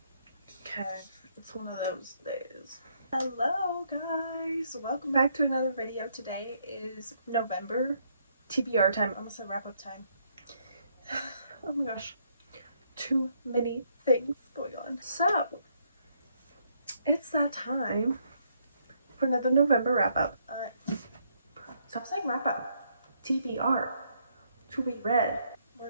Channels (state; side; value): inverted; both; correlation -0.72